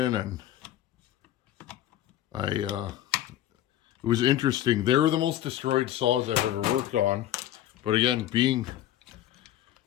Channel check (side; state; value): right; quieter; 12.8 dB